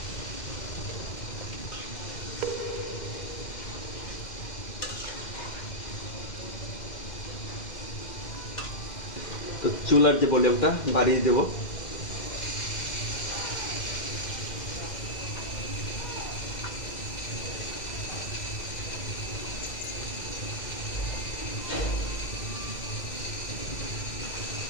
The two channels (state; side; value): late; right; 2.1 ms